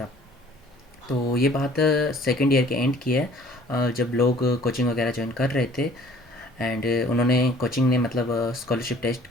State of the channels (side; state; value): both; normal; correlation 0.53